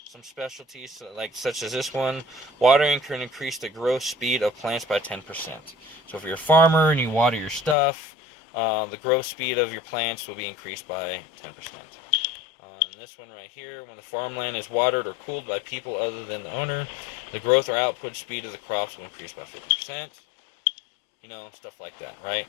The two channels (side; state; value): right; drops out; at 7.8 s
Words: some specialties, like such as this one. Watering can increase the growth speed of plants by 10%. So if you're a farmer and you water your stuff, the growth speed of your plants will be increased by 10%. And this one right here, when the farmland is watered or cooled by people other than the owner, the growth or output speed of the crops will increase by 50%. You know, stuff like that, right?